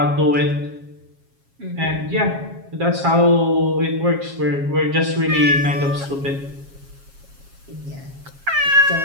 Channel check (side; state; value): left; late; 7.3 ms